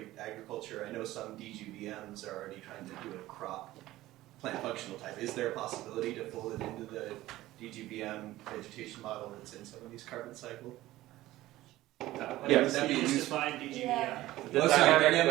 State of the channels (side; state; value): left; quieter; 16.3 dB